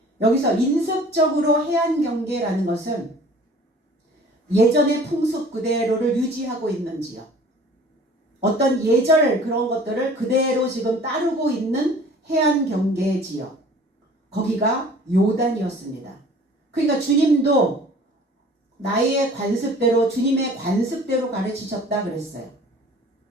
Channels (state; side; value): normal; both; correlation 0.48